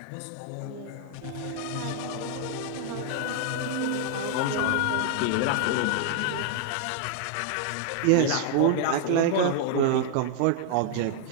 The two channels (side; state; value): both; different; correlation 0.00